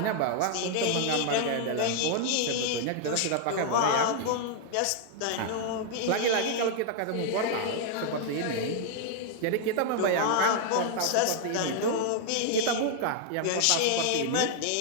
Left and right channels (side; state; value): both; different; correlation 0.00